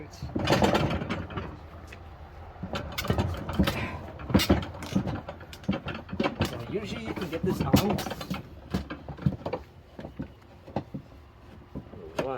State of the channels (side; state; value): both; identical; correlation 1.00